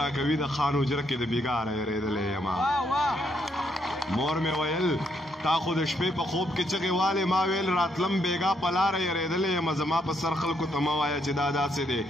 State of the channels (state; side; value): normal; both; correlation 0.75